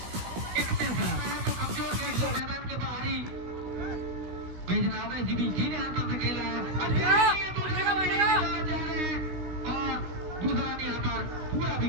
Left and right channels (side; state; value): left; late; 17 ms